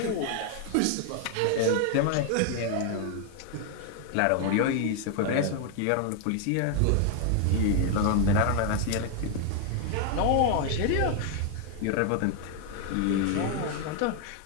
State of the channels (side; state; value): both; different; correlation 0.00